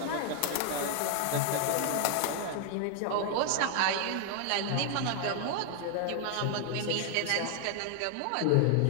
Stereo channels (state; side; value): different; both; correlation 0.00